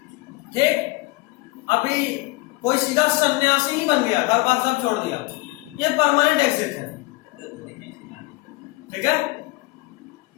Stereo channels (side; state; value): right; quieter; 23.2 dB